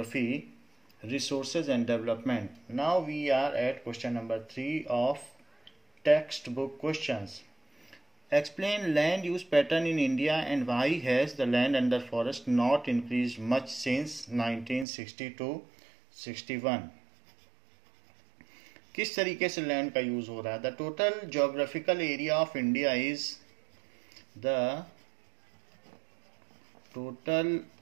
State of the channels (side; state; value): left; drops out; at 14.9 s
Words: resources and development. Now we are at question number 3 of text book questions. Explain land use pattern in India and why has the land under forest not increased much since 1960 to 61? किस तरीके से land का use हो रहा है? The total geographical area of India is the total